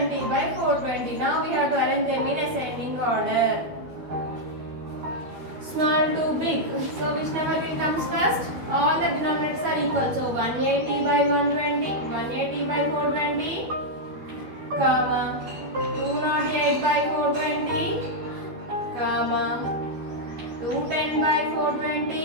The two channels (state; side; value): late; left; 12 ms